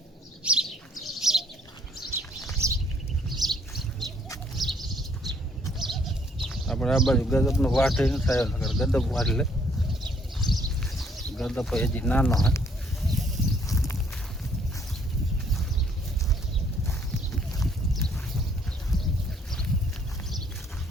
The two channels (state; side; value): normal; both; correlation 0.65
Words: આપણે આ બાજુ ગદપનો વાઢી ન થાય, ગદપ વાઢી લે. ગદપ હજી નાનો હે.